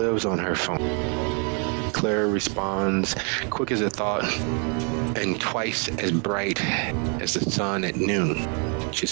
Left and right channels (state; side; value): quieter; left; 37.5 dB